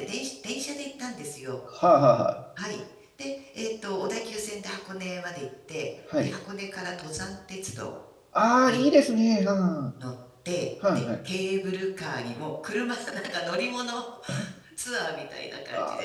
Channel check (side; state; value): both; identical; correlation 1.00